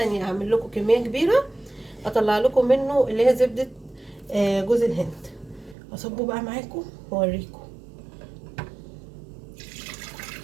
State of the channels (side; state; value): left; drops out; at 5.8 s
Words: اعمل لكم كمية كبيرة، اطلع لكم منه اللي هي زبدة جوز الهند. اصبه بقى معاكم واوريكم.